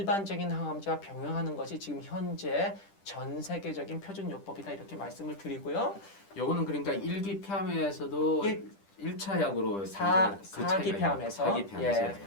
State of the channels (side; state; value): right; late; 10 ms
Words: 항암제와 병용하는 것이 지금 현재 전 세계적인 표준 요법이다 이렇게 말씀을 드리고요. 요거는 그러니까 1기 폐암에서도 1차 약으로 4기 폐암에서 4기 폐암에서 예.